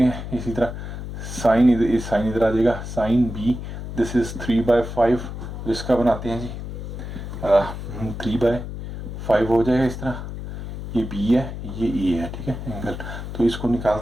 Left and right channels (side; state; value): left; noise; hum, 8 dB below the sound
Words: हैं। इसी तरह साइन इधर आ जाएगा, साइन बी दिस इज़ 3/5, तो इसका बनाते हैं जी 3/5 हो जाएगा इस तरह। ये बी है, ये ए है, ठीक है एंगल, तो इसको